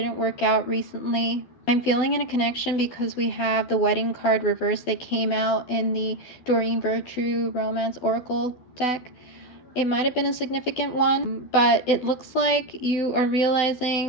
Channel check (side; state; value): right; late; 12 ms